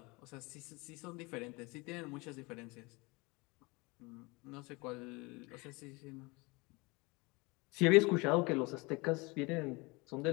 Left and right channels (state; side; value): quieter; right; 25.8 dB